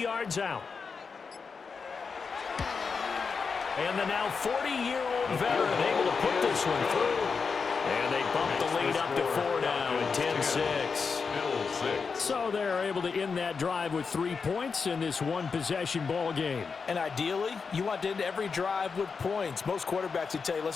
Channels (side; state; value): right; quieter; 5.2 dB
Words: yards out. And the now 40-year-old veteran able to put this one through. And they bump the lead up to 4 now at 10-6. So they're able to end that drive with 3 points in this one-possession ball game. And ideally, you want to end every drive with points. Most quarterbacks would tell you,